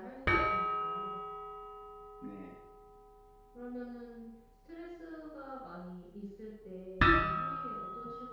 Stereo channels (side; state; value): both; identical; correlation 1.00